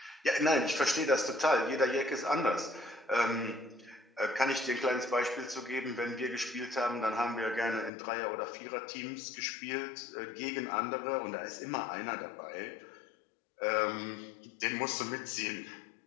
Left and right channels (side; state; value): right; drops out; at 7.9 s